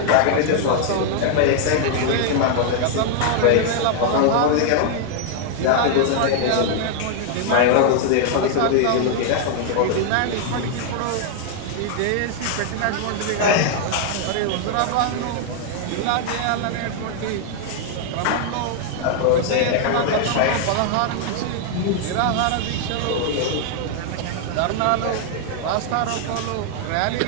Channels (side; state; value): both; different; correlation 0.00